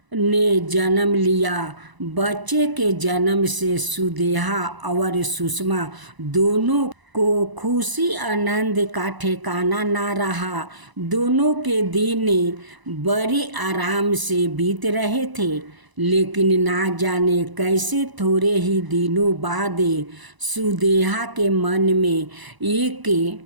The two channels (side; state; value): left; late; 1.0 ms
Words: ने जन्म लिया। बच्चे के जन्म से सुदेहा और सुषमा दोनों को खुशी आनंद का ठिकाना ना रहा। दोनों के दिन बड़े आराम से बीत रहे थे, लेकिन ना जाने कैसे थोड़े ही दिनों बाद सुदेहा के मन में एक